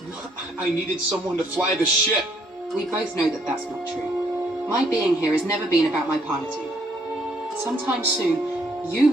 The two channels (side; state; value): both; normal; correlation 0.68